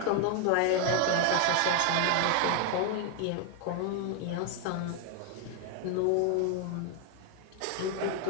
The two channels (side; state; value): both; different; correlation 0.01